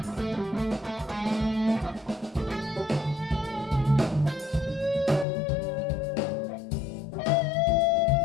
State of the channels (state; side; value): drops out; right; at 5.2 s